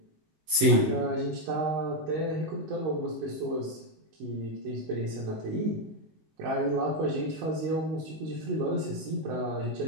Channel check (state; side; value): late; left; 19 ms